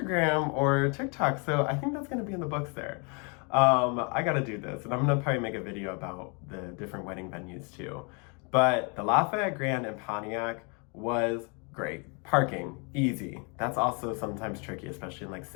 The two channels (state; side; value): quieter; right; 34.3 dB